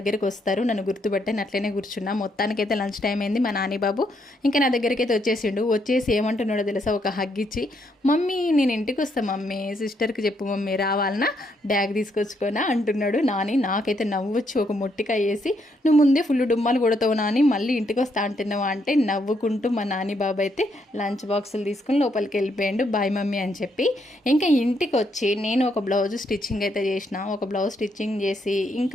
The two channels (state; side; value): normal; both; correlation 0.75